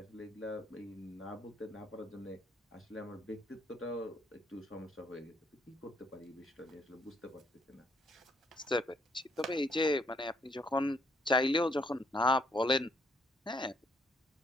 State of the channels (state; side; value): normal; both; correlation 0.69